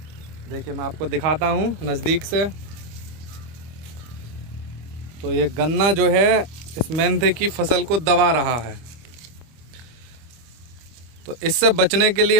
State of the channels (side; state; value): left; late; 25 ms